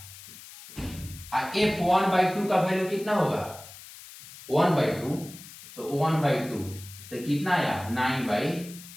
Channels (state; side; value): noise; left; hiss, 17 dB below the sound